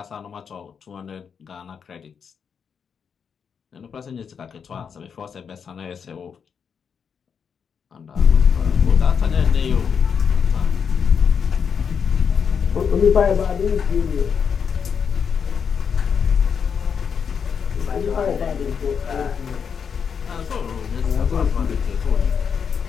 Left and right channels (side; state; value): right; quieter; 6.7 dB